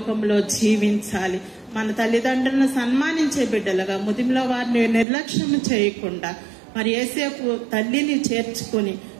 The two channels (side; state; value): left; drops out; at 5.1 s